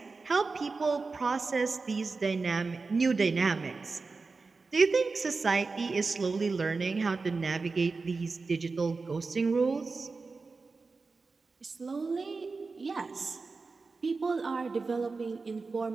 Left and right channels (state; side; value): quieter; left; 4.1 dB